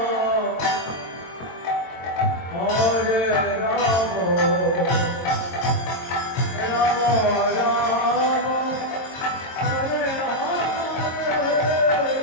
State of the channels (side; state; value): right; late; 22 ms